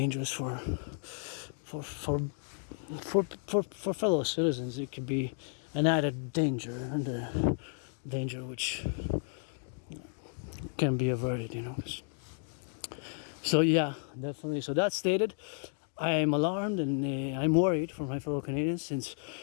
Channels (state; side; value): silent; right; 56 dB below the other